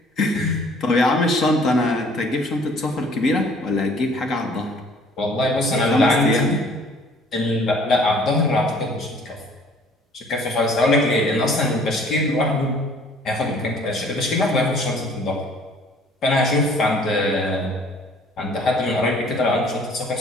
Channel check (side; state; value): both; normal; correlation 0.55